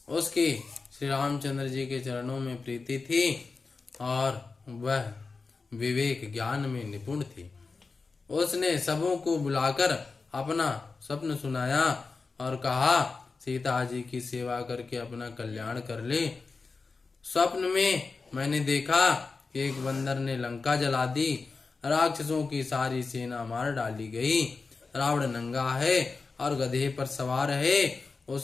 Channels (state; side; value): quieter; right; 4.3 dB